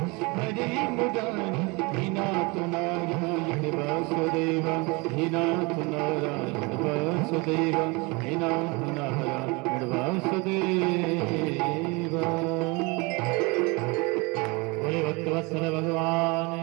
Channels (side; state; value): left; quieter; 27.3 dB